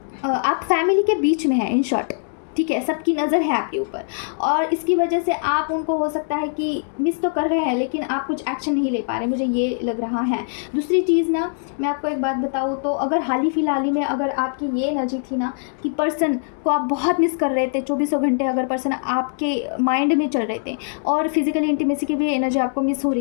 आप फैमिली के बीच में हैं, इन शॉर्ट, ठीक है, सबकी नज़र है आपके ऊपर और इसकी वजह से आप उनको हो सकता है कि मिस तो कर रहे हैं लेकिन आप कुछ एक्शन नहीं ले पा रहे, मुझे ये लग रहा है। दूसरी चीज़ ना, मैं आपको एक बात बताऊँ तो अगर हाल ही फिलहाल ही में अगर आपकी ये एनर्जी थी ना कि पर्सन को आप बहुत मिस कर रहे थे, चौबीसों घंटे अगर पर्सन आपके माइंड में चल रहे थे और फिज़िकली इंटीमेसी की भी एनर्जी आपको मिस हो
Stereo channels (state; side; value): silent; right; digital silence